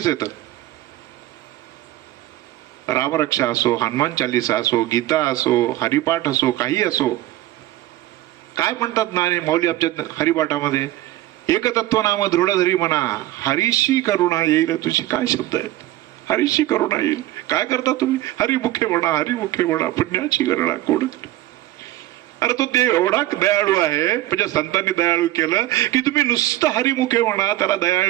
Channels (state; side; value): quieter; left; 15.5 dB